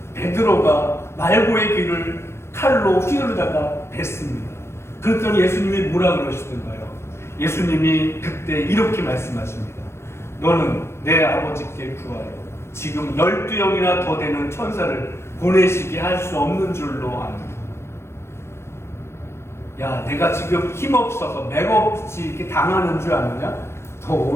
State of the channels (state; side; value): late; right; 0.13 ms